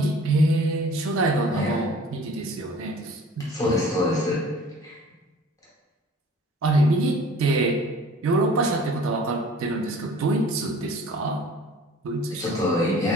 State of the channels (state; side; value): normal; both; correlation 0.49